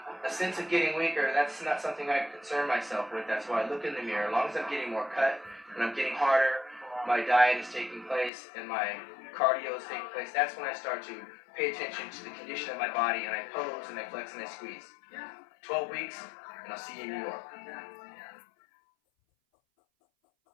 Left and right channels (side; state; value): right; drops out; at 8.3 s